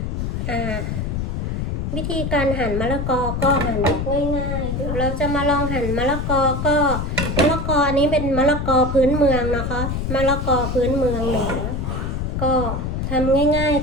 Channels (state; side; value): noise; left; rumble, 2 dB below the sound